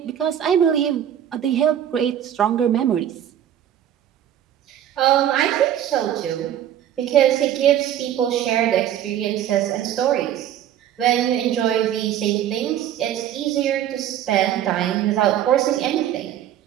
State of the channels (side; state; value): left; quieter; 10.7 dB